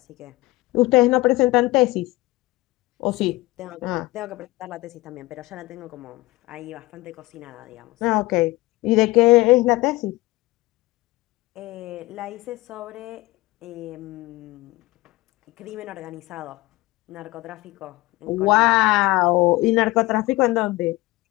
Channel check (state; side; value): quieter; right; 20.0 dB